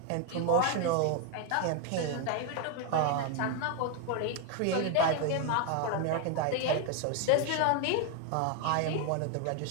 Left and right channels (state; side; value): different; both; correlation 0.01